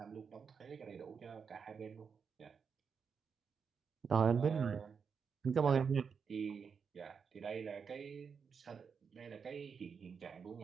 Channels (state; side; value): quieter; left; 6.1 dB